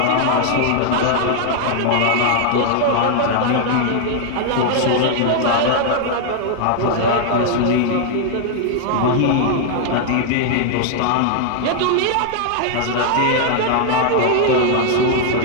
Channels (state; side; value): different; both; correlation 0.00